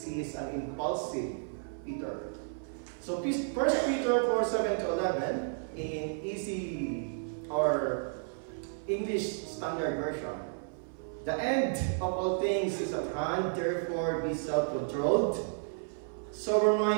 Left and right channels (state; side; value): silent; left; 56 dB below the other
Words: he is an impulsive Peter. So 1 Peter 4:7-11 in easy or English Standard Version. The end of all things is at hand, therefore be self-controlled,